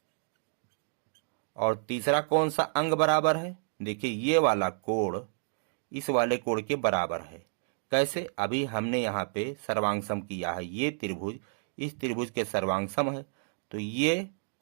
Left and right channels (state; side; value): silent; left; digital silence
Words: और तीसरा कौन सा अंग बराबर है? देखिए ये वाला कोण इस वाले कोण के बराबर है। कैसे? अभी हमने यहाँ पे सर्वांगसम किया है, ये त्रिभुज इस त्रिभुज के सर्वांगसम है, तो ये